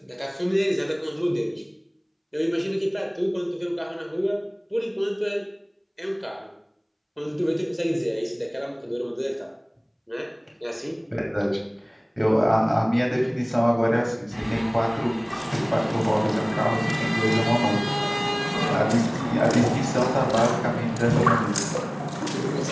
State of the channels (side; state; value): both; identical; correlation 1.00